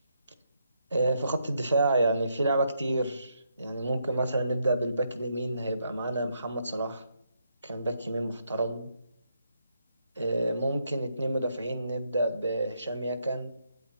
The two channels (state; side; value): inverted; both; correlation -0.77